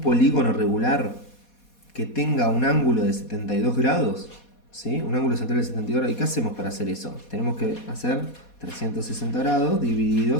polígono regular que tenga un ángulo de 72 grados? ¿Sí? Un ángulo central de 72 grados. ¿Y qué hacemos para hacer eso? Tenemos que hacer 360 grados dividido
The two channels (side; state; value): right; late; 4.2 ms